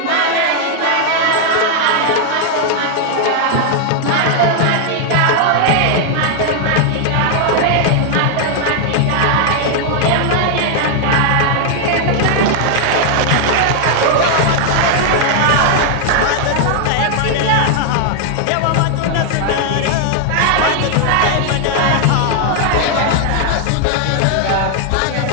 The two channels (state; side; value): different; both; correlation 0.00